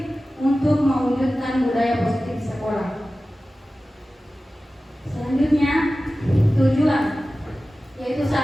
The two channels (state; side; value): normal; both; correlation 0.95